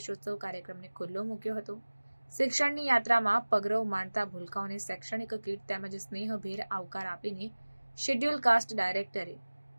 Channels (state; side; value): inverted; both; correlation -1.00